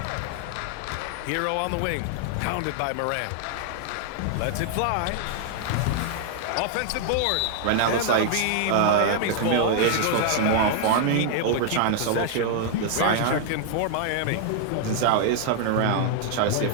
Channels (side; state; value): both; different; correlation 0.00